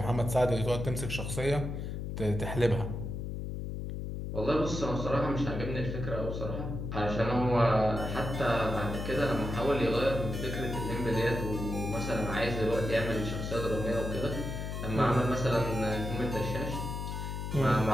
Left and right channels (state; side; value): noise; left; hum, 5 dB below the sound